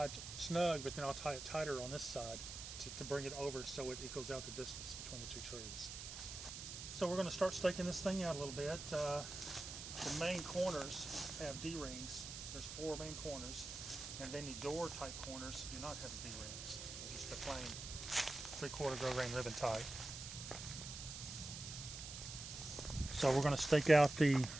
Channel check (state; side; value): noise; right; hiss, 8 dB below the sound